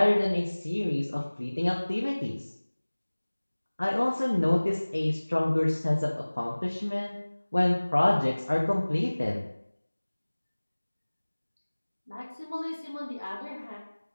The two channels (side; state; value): both; inverted; correlation -1.00